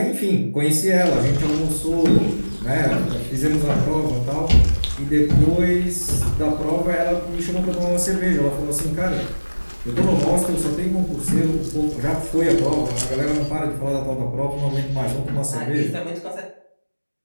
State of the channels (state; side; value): inverted; both; correlation -1.00